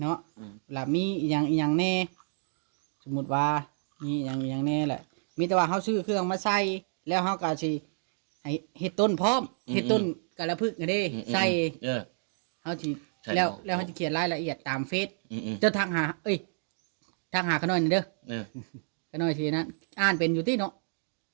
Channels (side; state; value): left; silent; digital silence